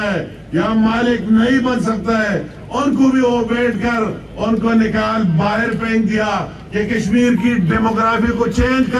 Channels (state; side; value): identical; both; correlation 1.00